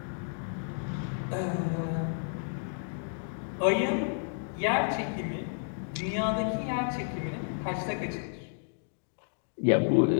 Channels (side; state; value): right; silent; digital silence